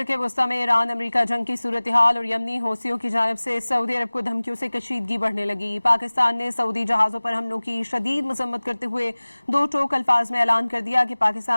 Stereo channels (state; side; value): inverted; both; correlation -1.00